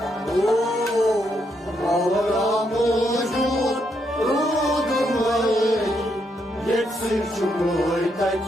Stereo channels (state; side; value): normal; both; correlation 0.77